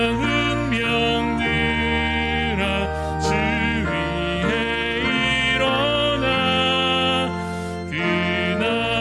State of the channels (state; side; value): identical; both; correlation 1.00